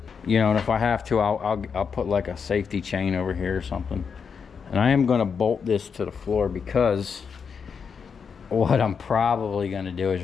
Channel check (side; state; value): right; quieter; 6.2 dB